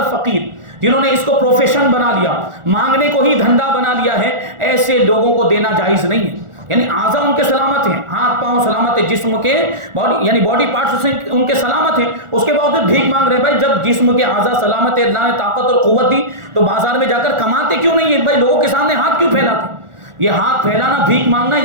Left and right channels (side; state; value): left; late; 1.4 ms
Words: فقیر، جنہوں نے اس کو پروفیشن بنا لیا، مانگنے کو ہی دھندا بنا لیا ہے، ایسے لوگوں کو دینا جائز نہیں ہے۔ یعنی اعضاء ان کے سلامت ہیں، ہاتھ پاؤں سلامت ہے، جسم کے باڈی یعنی باڈی پارٹس ان کے سلامت ہیں، اس کے باوجود بھیک مانگ رہے ہیں۔ بھائی جب جسم کے اعضاء سلامت ہے، اللہ نے طاقت اور قوت دی، تو بازار میں جا کر کماتے کیوں نہیں ہے؟ بھائی لوگوں کے سامنے ہاتھ کیوں پھیلاتے؟ یہ ہاتھ پھیلانا، بھیک مانگنا،